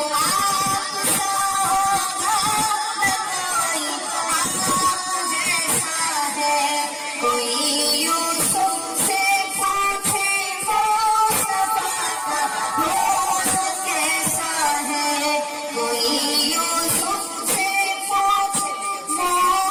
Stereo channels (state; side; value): identical; both; correlation 1.00